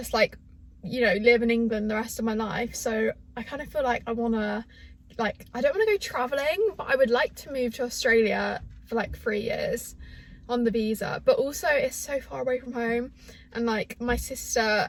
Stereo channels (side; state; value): both; identical; correlation 1.00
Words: like, you know, live in England the rest of my life. So I kind of feel like I want to, like, I don't want to go traveling, but I would like to move to Australia for like 3 years on the visa. But also it's so far away from home, and like my sister